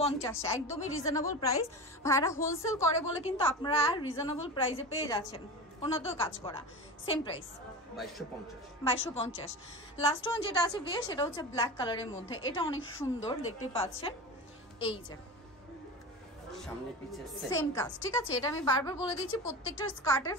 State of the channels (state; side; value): normal; both; correlation 0.28